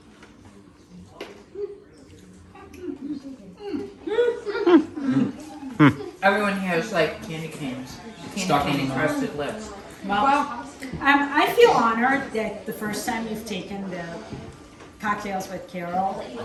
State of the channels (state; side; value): identical; both; correlation 1.00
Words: Everyone here is like candy canes. Stuck Candy in cane the mouth. crusted lips. Well, I feel honored that the first time you've taken the Cocktails with Carol